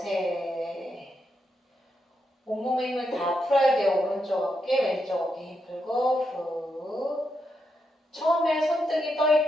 온몸의 힘을 다 풀어야 돼요. 오른쪽 어깨, 왼쪽 어깨 힘 풀고 후. 처음에 손등이 떠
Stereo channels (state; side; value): normal; both; correlation 0.83